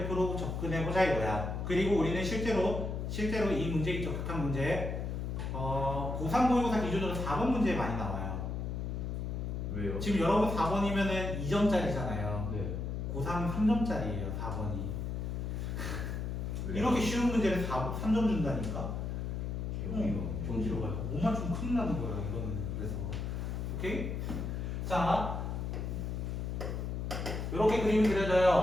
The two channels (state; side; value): noise; left; hum, 3 dB below the sound